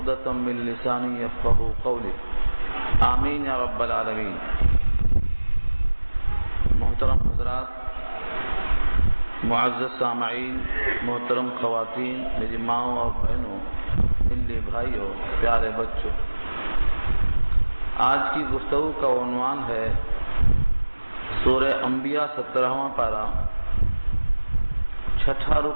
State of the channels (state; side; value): inverted; both; correlation -1.00